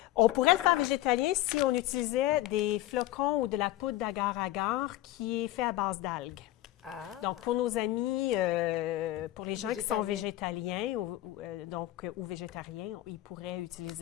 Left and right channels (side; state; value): right; quieter; 15.4 dB